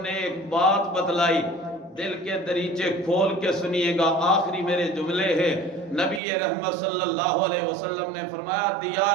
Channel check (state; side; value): drops out; left; at 6.2 s